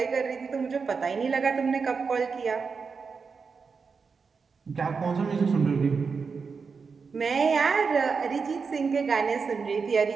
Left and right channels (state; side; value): quieter; left; 5.2 dB